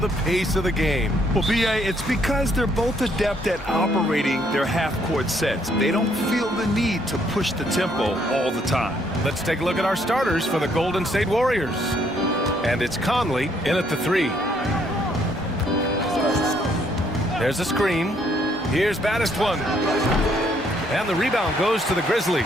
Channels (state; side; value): normal; both; correlation 0.69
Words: pace of the game. Well, B.A., it's because they're both adept at operating their half-court sets. They don't feel the need to push the tempo all the time. Let's take a look at our starters for the Golden State Warriors. And it's Conley in at the 3. There's a screen. Here's baddest one. And the rebound goes to the Grizzlies.